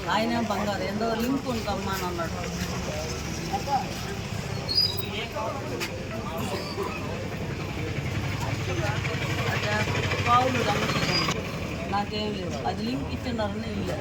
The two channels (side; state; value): both; identical; correlation 1.00